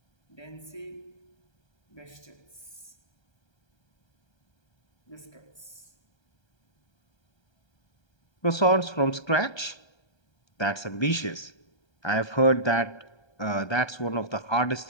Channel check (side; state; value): right; late; 1.3 ms